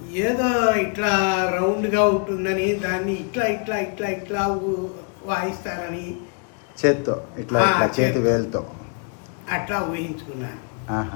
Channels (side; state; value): right; quieter; 38.7 dB